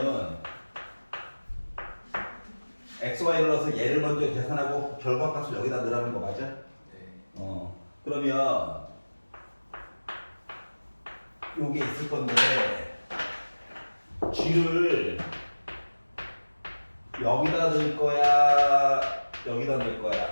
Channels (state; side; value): inverted; both; correlation -1.00